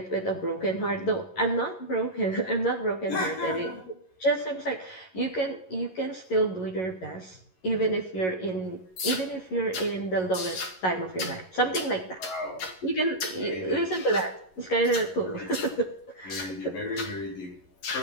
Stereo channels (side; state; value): right; late; 11 ms